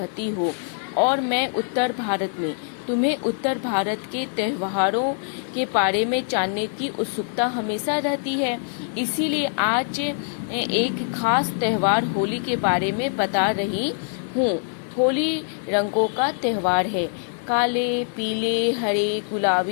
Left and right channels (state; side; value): silent; right; digital silence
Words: हो और मैं उत्तर भारत में। तुम्हें उत्तर भारत के त्योहारों के बारे में जानने की उत्सुकता हमेशा रहती है, इसीलिए आज एक खास त्योहार होली के बारे में बता रही हूँ। होली रंगों का त्योहार है। काले, पीले, हरे,